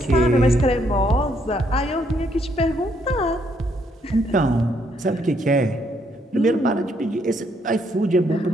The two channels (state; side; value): normal; both; correlation 0.72